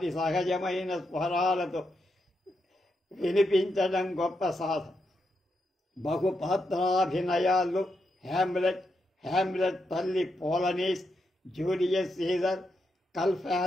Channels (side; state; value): both; normal; correlation 0.83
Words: సహజమైన స్వరాలతో వినిపించడం గొప్ప సాధన. బహుపాత్రాభినయాల్లో హ్యామ్లెట్ తల్లి పోలనీస్, జూలియస్ సీజర్,